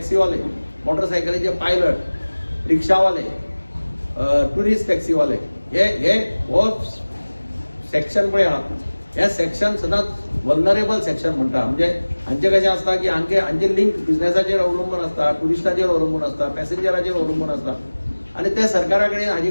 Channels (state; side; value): inverted; both; correlation -1.00